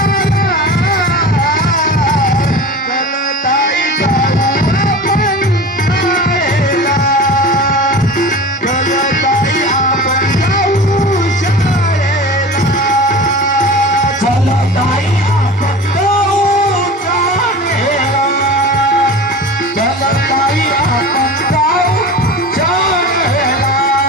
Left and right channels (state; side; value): normal; both; correlation 0.34